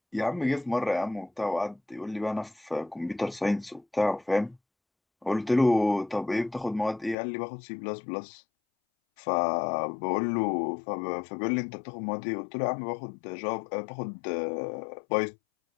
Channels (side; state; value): right; drops out; at 7.2 s